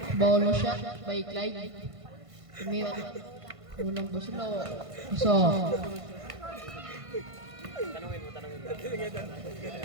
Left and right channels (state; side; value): late; left; 1.5 ms